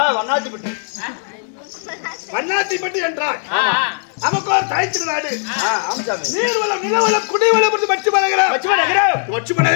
வண்ணாத்திப்பட்டி. வண்ணாத்திப்பட்டி என்றால் நமக்கு ஒரு தாய் திருநாடு. நீர்வளம், நிலவளம், குடிவளம்,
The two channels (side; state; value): right; silent; 58 dB below the other